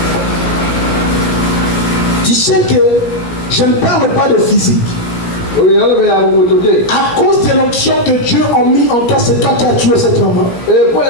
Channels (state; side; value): late; right; 16 ms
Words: Tu sais que je ne parle pas de physique. À cause de l'onction que Dieu a mis en toi, c'est toi qui as tué cette maman.